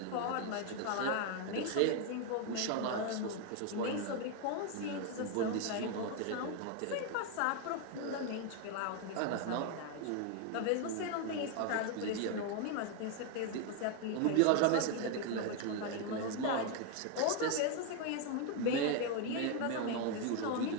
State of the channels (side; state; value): both; different; correlation 0.01